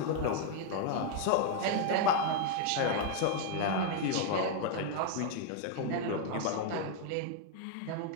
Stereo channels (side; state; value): both; different; correlation 0.00